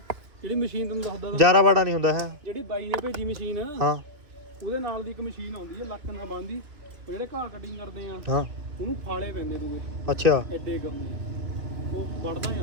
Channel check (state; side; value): late; left; 2.4 ms